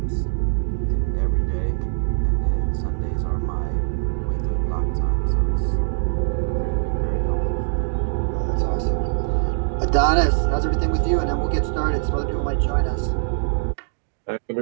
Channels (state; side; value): silent; left; digital silence